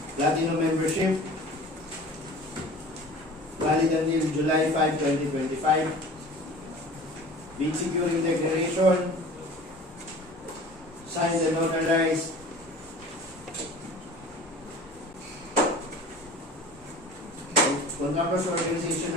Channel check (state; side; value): normal; both; correlation 0.42